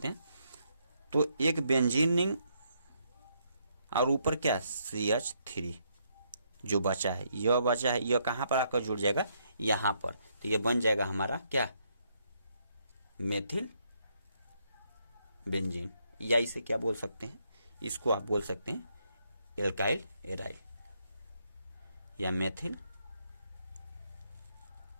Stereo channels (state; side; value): inverted; both; correlation -0.74